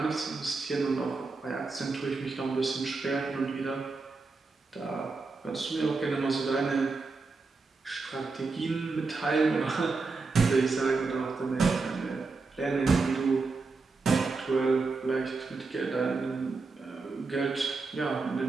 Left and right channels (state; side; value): quieter; left; 4.1 dB